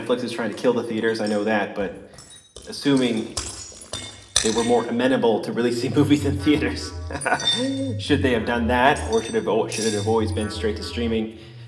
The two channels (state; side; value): identical; both; correlation 1.00